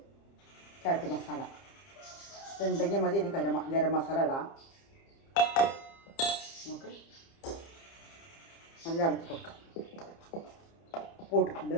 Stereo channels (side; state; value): right; late; 30 ms